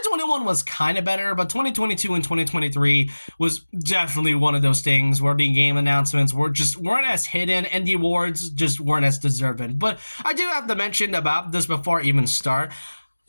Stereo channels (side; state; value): both; inverted; correlation -1.00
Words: was kind of better, but 2022 and 2023 was definitely one of those things where the game announcements weren't as hidden and the awards just weren't as deserving. But I do have to mention about this before I even start,